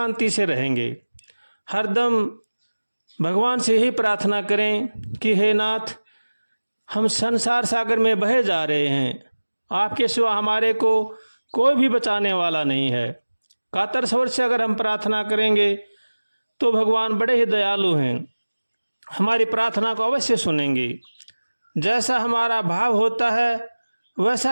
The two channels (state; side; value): inverted; both; correlation -1.00